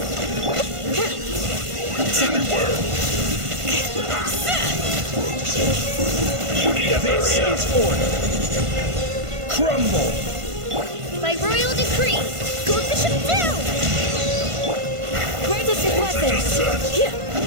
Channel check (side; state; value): left; late; 1.5 ms